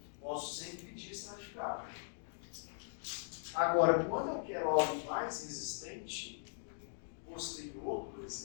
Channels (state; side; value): silent; right; digital silence